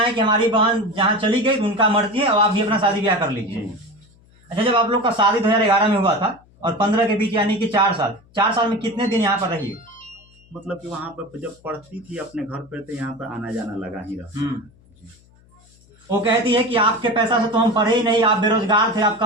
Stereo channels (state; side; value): noise; left; hum, 29 dB below the sound